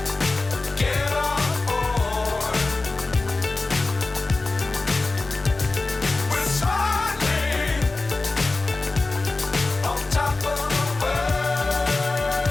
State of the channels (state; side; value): quieter; right; 3.4 dB